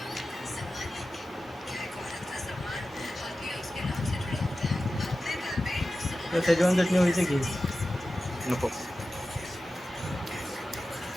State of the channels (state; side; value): normal; both; correlation 0.94